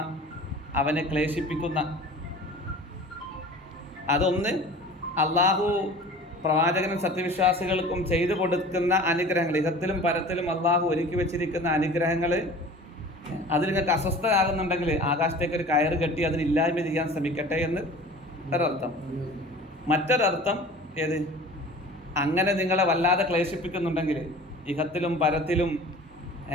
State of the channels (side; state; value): both; normal; correlation 0.42